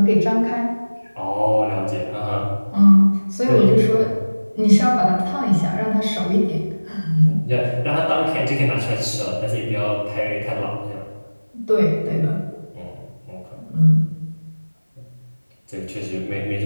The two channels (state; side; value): inverted; both; correlation -1.00